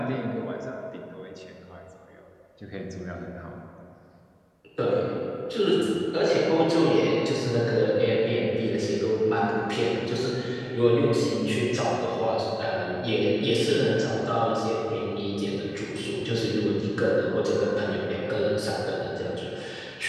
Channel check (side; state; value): both; identical; correlation 1.00